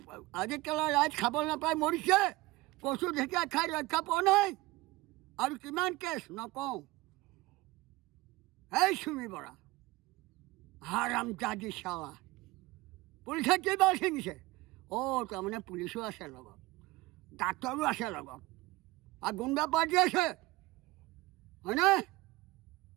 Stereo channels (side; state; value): left; quieter; 20.2 dB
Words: কেলা ৰাইজ খাবলৈ নাপাই মৰিছে কচু ঢেকীয়া খাই ৰক্ষা পোৱা নাই আৰু কিমান কেছ নকওঁ এই চুমি বৰা হাৰামজাদি চালা পুলিচে কেইবাৰ ছিঙিছে তাৰমানে পুলিচো আছে লগত ডাক্তৰো আছে লগত আৰু গুণ্ডা পাৰ্টি আছে হয়নে